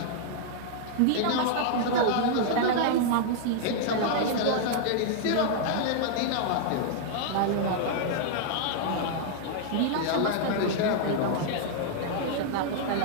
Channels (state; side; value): different; both; correlation -0.01